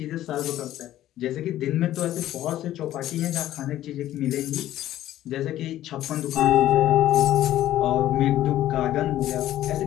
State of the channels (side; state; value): right; quieter; 13.3 dB